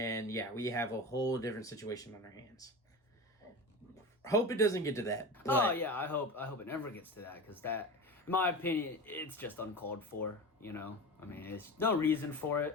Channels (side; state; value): both; normal; correlation 0.29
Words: yeah, we have a whole different situation on our hands. Hope it doesn't get to that. Oh yeah, I hope it never gets to that, because that, in my opinion, it's just uncalled for. I mean, it's no reason for